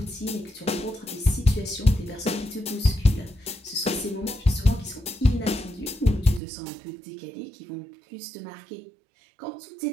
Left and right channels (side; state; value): left; drops out; at 6.4 s